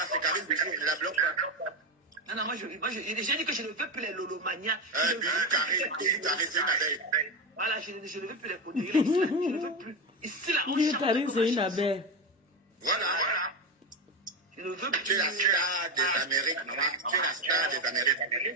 c'est Karim Bijou, ne la bloque pas. Non, moi, j'ai dit que je ne veux plus les lolomanias. Karim, c'est une abeille. Voilà, je ne veux plus les poteries, je ne veux plus. Ici, là, on chante. Karim, c'est une abeille. Voilà. Je ne veux plus. Tu es la star des Amériques, maman. Tu es la star des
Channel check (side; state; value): both; normal; correlation 0.15